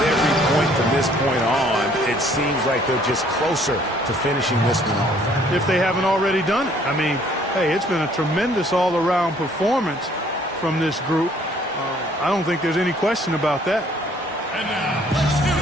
point from this point on, it seems like they're just closer to finishing this one off. If they haven't already done it. I mean, hey, it's been a tremendous all-around performance from this group. I don't think there's any question about that. And now, let's do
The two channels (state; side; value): normal; both; correlation 0.60